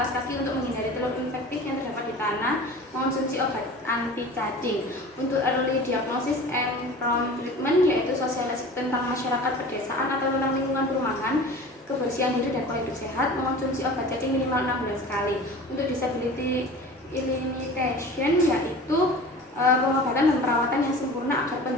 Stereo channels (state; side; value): normal; both; correlation 0.39